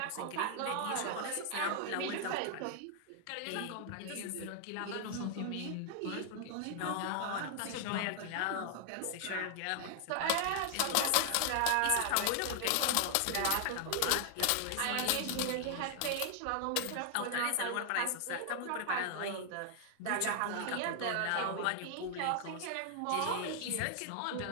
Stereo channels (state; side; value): different; both; correlation 0.00